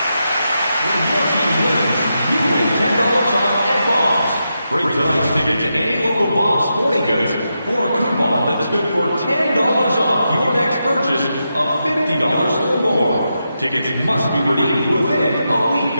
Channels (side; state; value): both; inverted; correlation -0.86